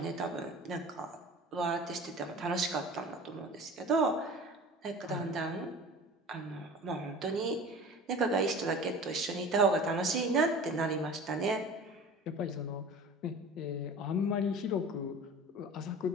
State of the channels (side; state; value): both; normal; correlation 0.39